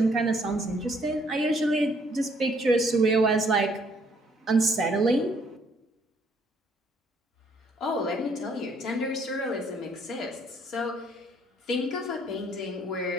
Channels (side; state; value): both; normal; correlation 0.65